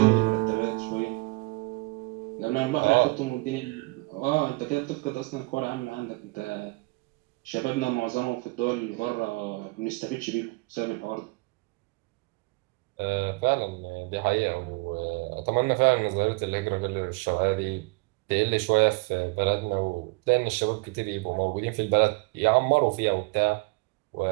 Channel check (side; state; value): left; quieter; 26.0 dB